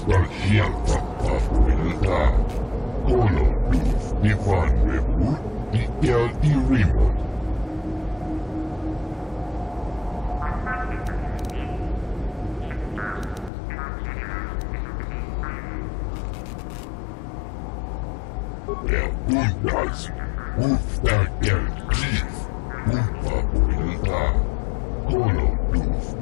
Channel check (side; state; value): right; drops out; at 13.5 s